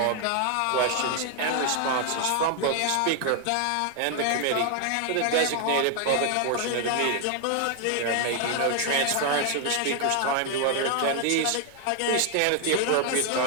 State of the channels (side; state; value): both; different; correlation 0.00